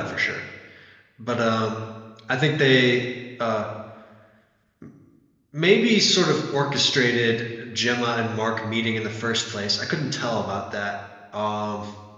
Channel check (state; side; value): identical; both; correlation 1.00